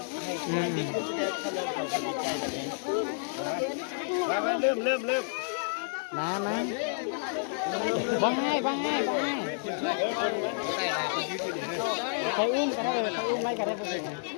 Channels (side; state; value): right; silent; digital silence